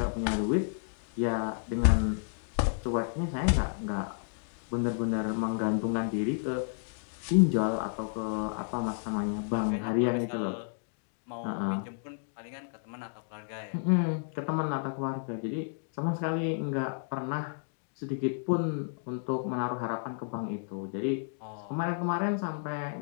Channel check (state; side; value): silent; right; digital silence